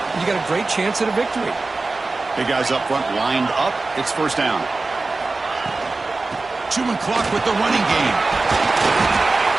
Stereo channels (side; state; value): left; quieter; 3.5 dB